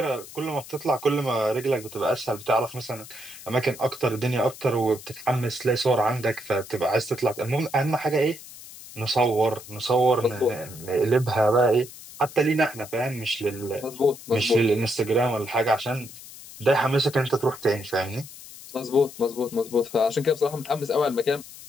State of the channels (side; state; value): left; noise; hiss, 16 dB below the sound